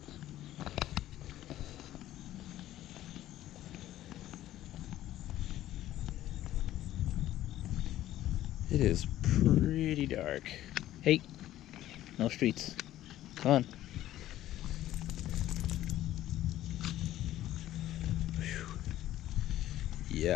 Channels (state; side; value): quieter; right; 13.7 dB